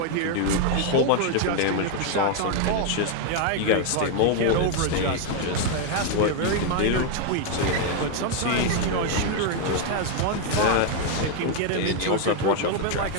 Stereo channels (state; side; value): different; both; correlation 0.01